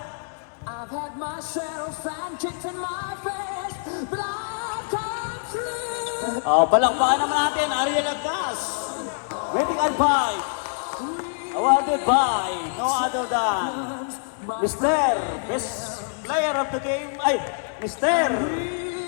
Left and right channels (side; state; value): right; silent; digital silence